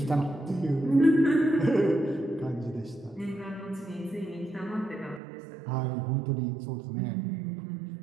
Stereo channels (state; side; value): drops out; left; at 5.2 s